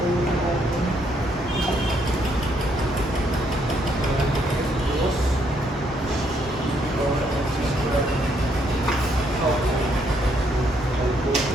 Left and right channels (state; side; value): normal; both; correlation 0.72